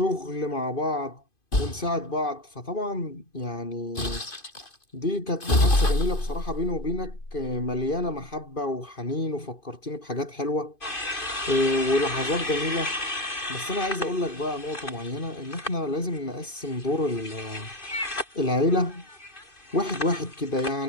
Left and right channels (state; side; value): late; right; 2.5 ms